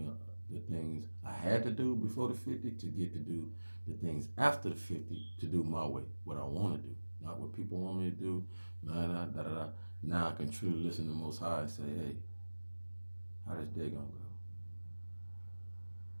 the things I had to do before the 50 to get to do the things after the 50 to do my way, what I want to do, not what people want me to do. Nah, nah, da, da, da. Now I can truly listen to the Most High and say, hey, how this day gonna go?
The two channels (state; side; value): inverted; both; correlation -1.00